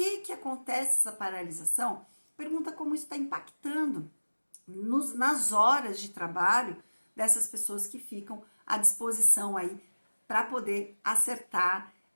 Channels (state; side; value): inverted; both; correlation -1.00